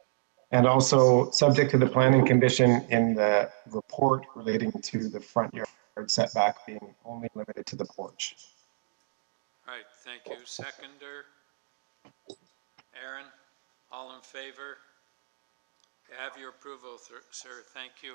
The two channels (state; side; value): silent; left; digital silence